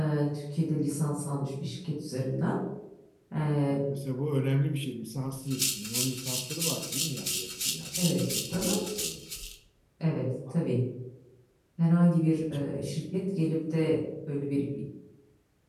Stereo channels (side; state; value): both; identical; correlation 1.00